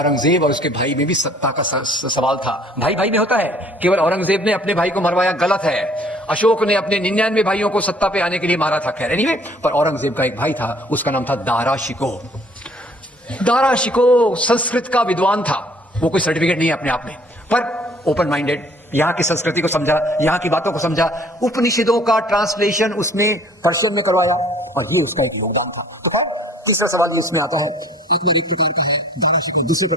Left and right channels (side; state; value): both; normal; correlation 0.55